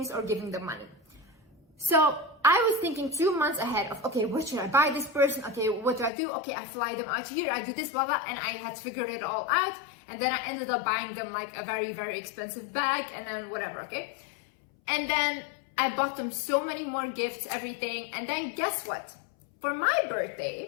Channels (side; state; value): right; drops out; at 6.1 s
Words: or giving them money. So I was thinking 2 months ahead of, okay, what should I buy this person? Okay, what do I do? Okay, I fly them out here, I do this, blah, blah, and I had figured it all out. And then I ended up buying them like a very, very expensive bag and then whatever, okay? And then I bought them so many more gifts, everything. And then guess what? For my